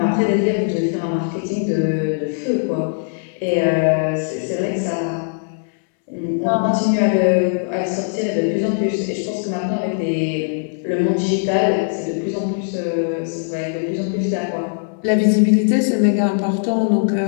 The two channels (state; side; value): silent; right; 66 dB below the other